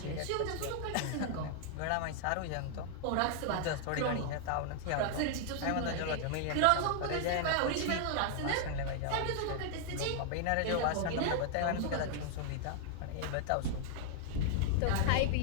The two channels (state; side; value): different; both; correlation 0.00